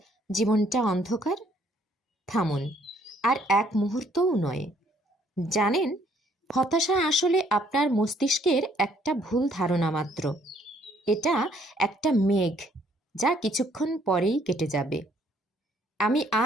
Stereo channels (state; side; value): normal; both; correlation 0.65